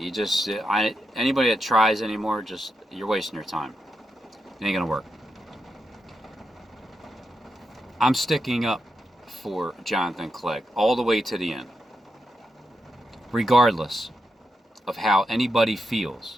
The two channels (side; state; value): both; normal; correlation 0.85